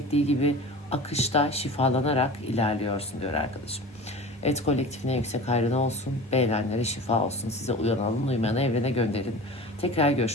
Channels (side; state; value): both; normal; correlation 0.36